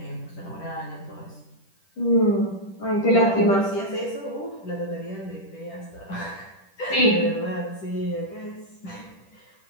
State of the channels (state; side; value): late; right; 10 ms